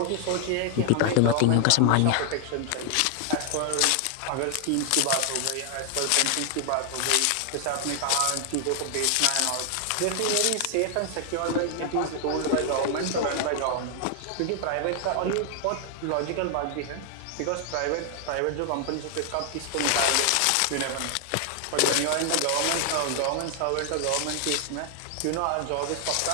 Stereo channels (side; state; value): both; different; correlation 0.00